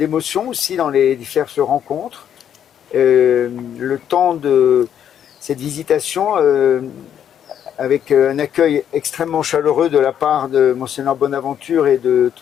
aussi dans les diverses rencontres. Le temps de cette visitation avec un accueil extrêmement chaleureux de la part de Monseigneur Bonaventure et de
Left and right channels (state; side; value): quieter; right; 9.4 dB